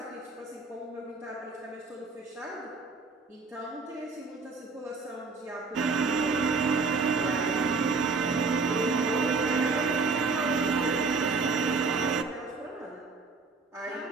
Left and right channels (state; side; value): quieter; left; 4.2 dB